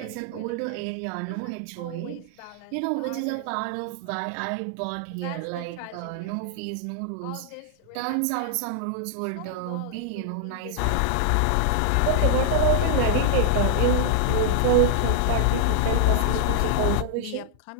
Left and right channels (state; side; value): different; both; correlation -0.01